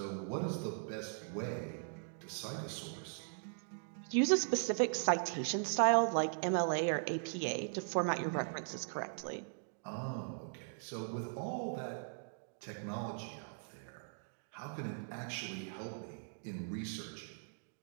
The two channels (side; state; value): left; silent; digital silence